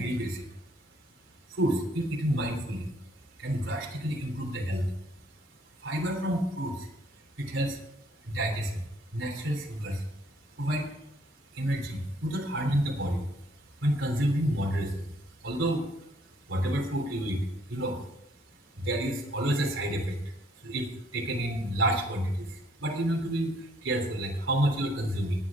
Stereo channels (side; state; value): both; normal; correlation 0.65